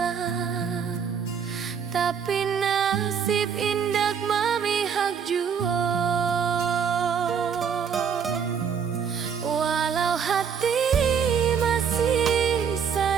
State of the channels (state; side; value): quieter; left; 7.1 dB